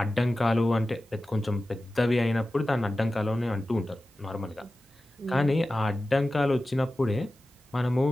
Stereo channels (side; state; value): both; normal; correlation 0.95